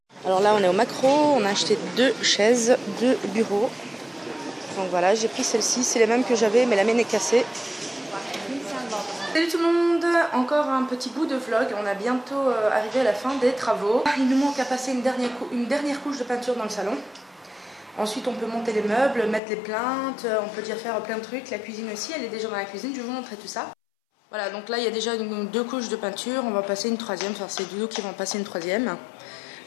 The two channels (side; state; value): right; drops out; at 19.4 s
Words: Alors là on est au Macro, on a acheté 2 chaises, 2 bureaux. Donc voilà, j'ai pris celle-ci, c'est les mêmes que j'avais mais la mienne est cassée. Salut tout le monde, encore un petit bout de vlog, on a bientôt arrivé à la fin des travaux. Il nous manque à passer une dernière couche de peinture dans le salon. Ensuite on peut monter les meubles, mettre les plaintes, on peut déjà faire plein de trucs. La cuisine aussi, elle est déjà dans la cuisine, je vais vous montrer tout ça. Voilà, donc là il y a déjà 2 couches de peinture, on va passer une 3e, enfin c'est Doudou qui va en passer une 3e.